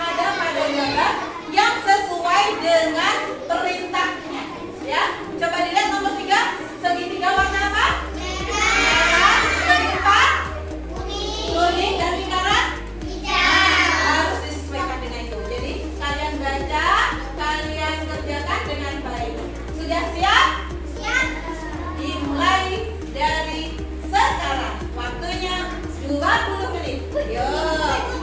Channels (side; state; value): both; identical; correlation 1.00